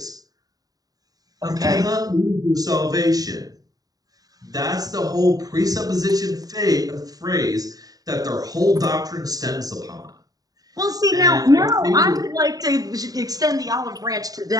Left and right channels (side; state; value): left; late; 0.18 ms